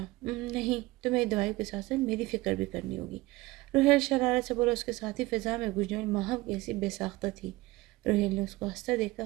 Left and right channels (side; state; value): left; quieter; 20.1 dB